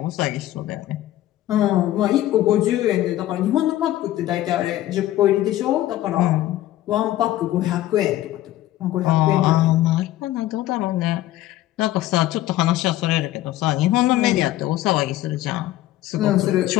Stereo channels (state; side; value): quieter; right; 14.5 dB